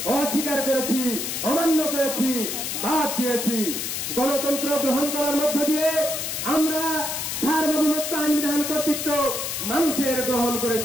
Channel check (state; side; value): noise; left; hiss, 3 dB below the sound